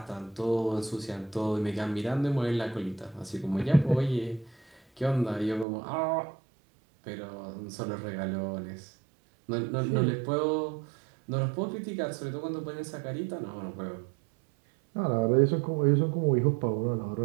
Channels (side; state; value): left; drops out; at 5.7 s